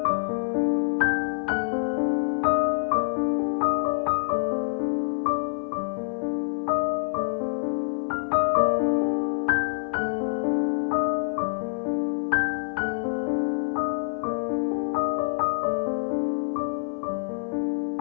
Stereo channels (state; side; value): silent; right; digital silence